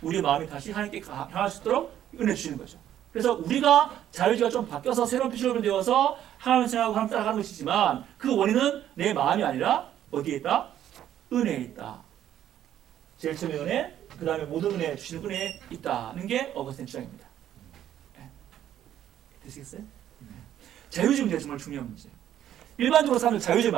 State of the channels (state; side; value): quieter; left; 11.2 dB